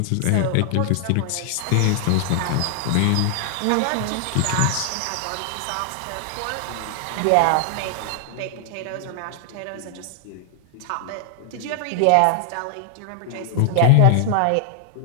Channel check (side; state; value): both; different; correlation 0.00